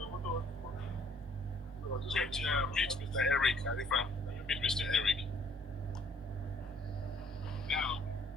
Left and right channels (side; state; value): both; normal; correlation 0.61